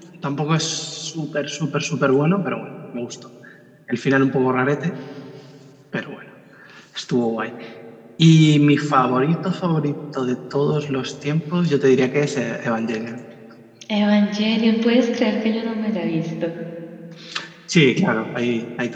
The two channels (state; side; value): identical; both; correlation 1.00